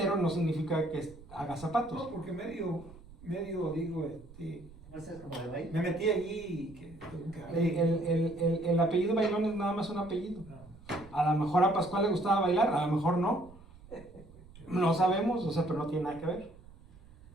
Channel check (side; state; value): right; noise; rumble, 21 dB below the sound